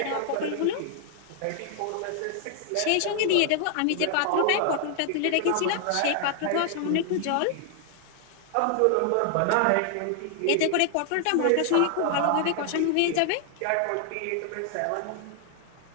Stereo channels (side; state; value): both; different; correlation 0.00